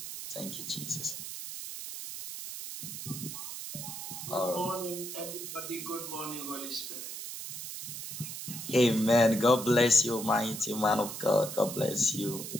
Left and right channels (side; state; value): right; noise; hiss, 8 dB below the sound